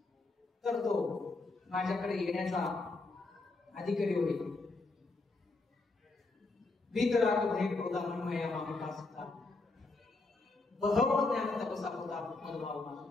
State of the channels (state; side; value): quieter; right; 3.5 dB